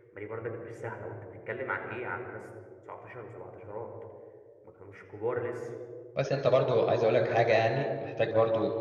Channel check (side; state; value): both; identical; correlation 1.00